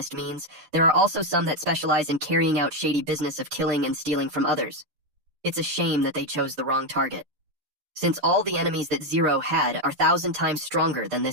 means, there are also some that specialize in carrying out shady business of killing and stealing from others. It's a shame that they chose the wrong target, since all the enemies that Zero had are 1,000 times stronger than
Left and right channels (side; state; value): left; late; 6.5 ms